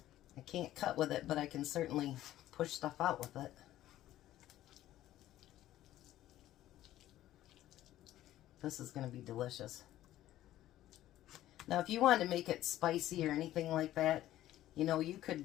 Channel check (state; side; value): quieter; right; 13.9 dB